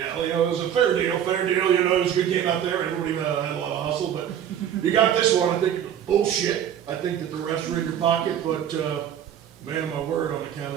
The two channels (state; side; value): quieter; left; 9.7 dB